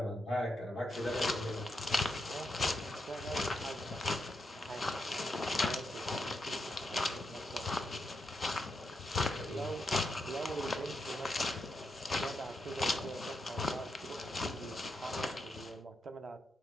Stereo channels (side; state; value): both; normal; correlation 0.84